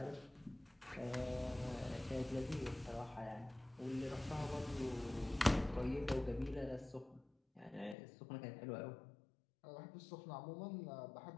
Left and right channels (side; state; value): right; drops out; at 8.0 s